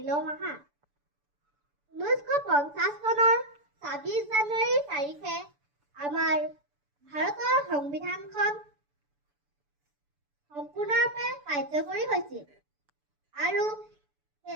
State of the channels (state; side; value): late; left; 6.9 ms